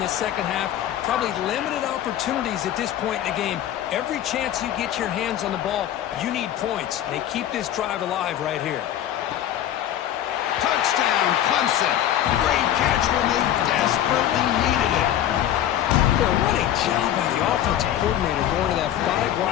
the second half. Probably limited opportunities at this point in the game. Every chance you get your hands on the ball, you need points. They keep this drive alive right here. Touchdown, Clemson. Great catch when they desperately needed it. Well, what a job by the offensive coordinator going to that 5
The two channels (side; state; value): right; quieter; 11.5 dB